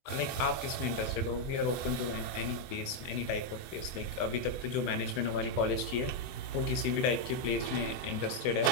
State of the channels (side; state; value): right; late; 24 ms